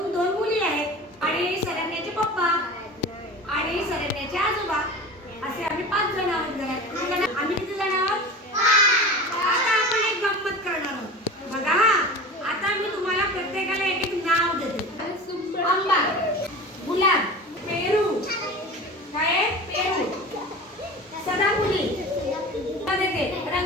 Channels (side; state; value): both; normal; correlation 0.33